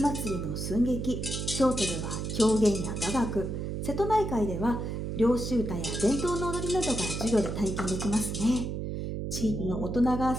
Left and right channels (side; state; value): right; noise; hum, 4 dB below the sound